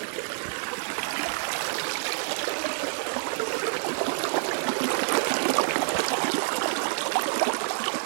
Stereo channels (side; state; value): left; silent; digital silence